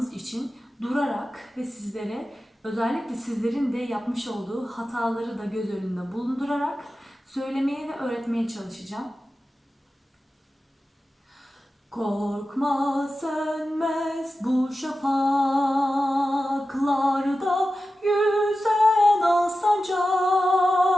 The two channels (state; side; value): normal; both; correlation 0.93